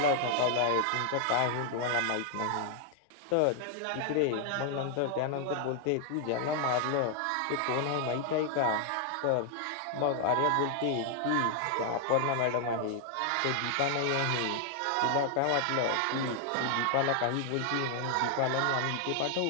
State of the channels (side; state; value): both; different; correlation 0.00